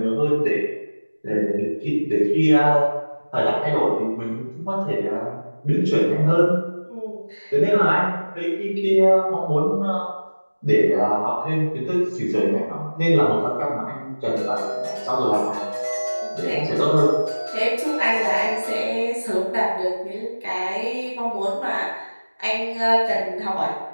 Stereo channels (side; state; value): both; inverted; correlation -1.00